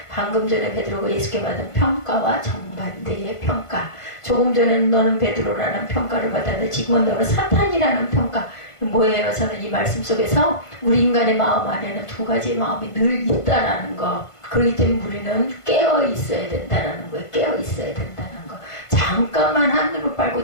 방금 전에 베드로가 예수께 받은 평가와 정반대의 평가. 조금 전에는 너는 베드로라는 평가를 받았는데 지금은 너는 사탄이라는 평가. 뭐예요? 저는 이 말씀 속에서 우리 인간의 마음 안에는 두 가지의 마음이 늘 있다라는 거. 그렇기 때문에 우리는 깨어 있어야 된다라는 거예요. 깨어 있어야 된다는 거. 잠깐만 하늘을 빨고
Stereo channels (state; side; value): late; right; 1.5 ms